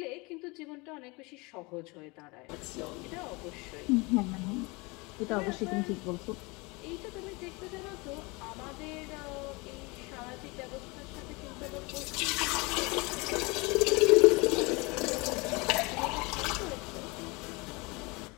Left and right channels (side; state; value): right; quieter; 26.4 dB